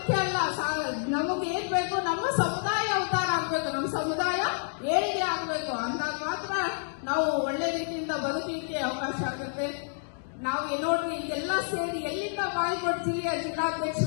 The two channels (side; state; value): right; silent; digital silence